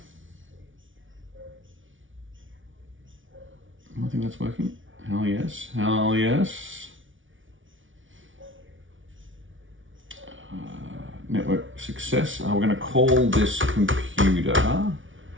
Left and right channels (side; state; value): left; late; 0.56 ms